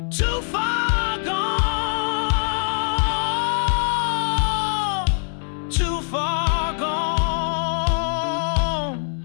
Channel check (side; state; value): right; silent; 61 dB below the other